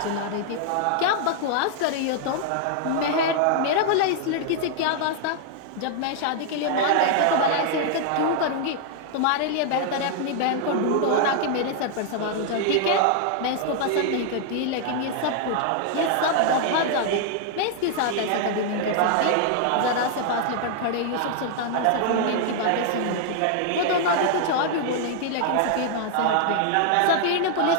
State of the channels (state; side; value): different; both; correlation 0.00